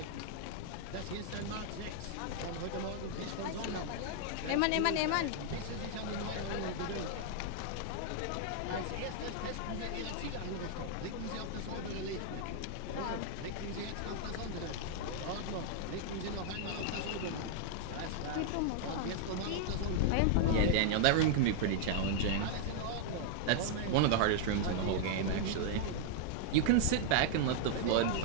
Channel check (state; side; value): different; both; correlation -0.01